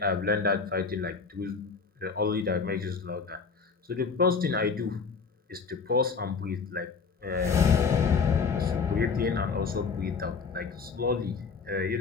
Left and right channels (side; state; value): right; quieter; 5.2 dB